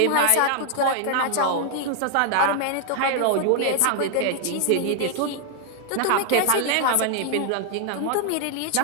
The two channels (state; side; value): different; both; correlation 0.00